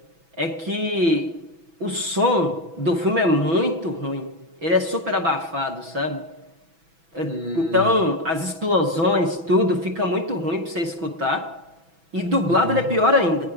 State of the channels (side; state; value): left; late; 6.1 ms